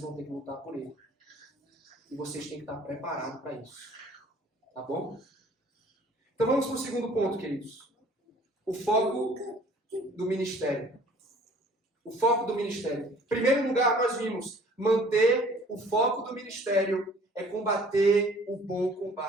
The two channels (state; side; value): normal; both; correlation 0.53